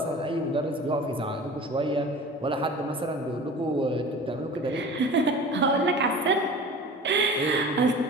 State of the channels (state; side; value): normal; both; correlation 0.39